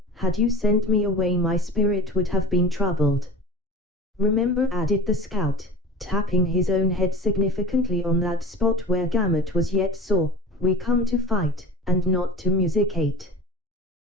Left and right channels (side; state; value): both; normal; correlation 0.37